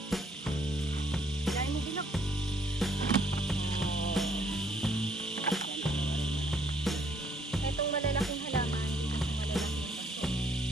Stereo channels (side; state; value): both; normal; correlation 0.66